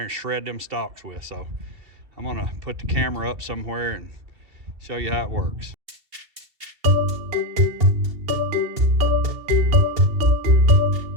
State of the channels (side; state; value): left; late; 2.7 ms